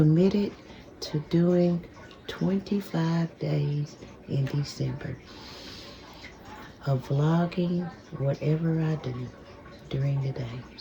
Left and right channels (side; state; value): both; identical; correlation 1.00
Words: to doing 25 days in December of vlogging whatever I do during the day.